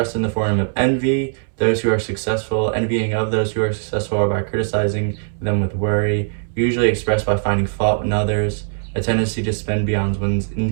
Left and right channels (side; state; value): left; silent; digital silence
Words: in the form of envy, those who are successful, envying of those who are successful, or by criticizing them with worry, usually expressed by finding fault in others, a tendency to spend beyond one's